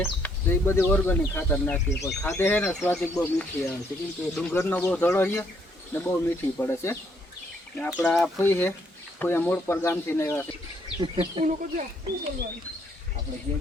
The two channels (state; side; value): normal; both; correlation 0.69